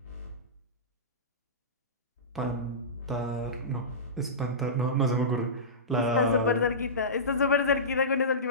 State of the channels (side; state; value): both; normal; correlation -0.20